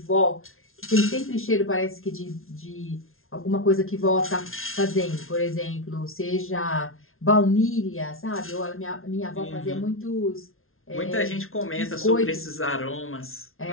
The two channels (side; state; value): right; late; 0.61 ms